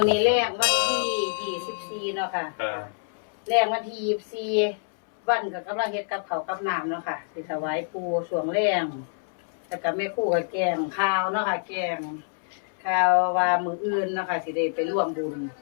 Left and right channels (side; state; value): right; silent; 60 dB below the other